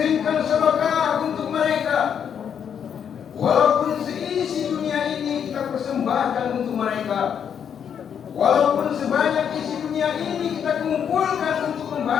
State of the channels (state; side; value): quieter; right; 8.1 dB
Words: sedekah untuk mereka. Walaupun seisi dunia ini kita persembahkan untuk mereka. Walaupun sebanyak isi dunia ini kita kumpulkan untuk